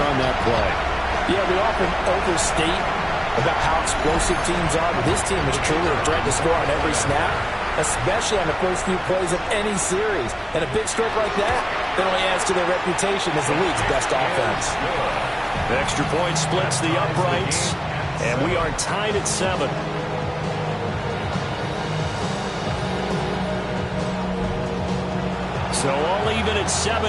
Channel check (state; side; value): identical; both; correlation 1.00